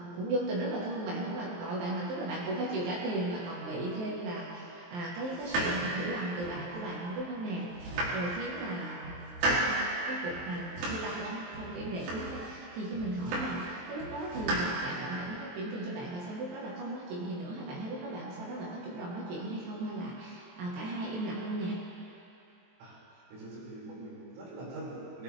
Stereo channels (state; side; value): late; left; 23 ms